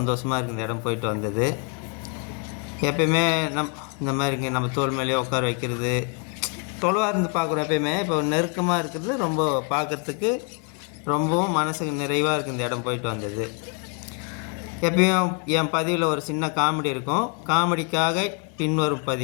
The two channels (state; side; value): quieter; right; 36.6 dB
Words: இருக்குது இந்த இடம் போயிட்டு வந்தது. எப்பயுமே இந்த மாதிரிங்க நம்ம தோல் மேலேயே உட்கார வைக்கிறது, தொலைவாக இருந்து பார்க்குறோம். எப்பயுமே இப்போ நெருக்கமாக இருக்கிறது ரொம்ப பார்க்குறதுக்கு ரொம்பவும் மனசுக்கு நிறைவாக இருக்குது இந்த இடம் போயிட்டு வந்தது. எப்பயும் என் பதிவில் ஒரு சின்ன காமெடி இருக்கும். காமெடிக்காக பின்வரும்